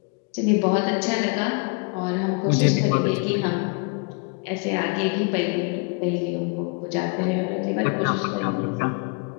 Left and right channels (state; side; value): quieter; right; 33.6 dB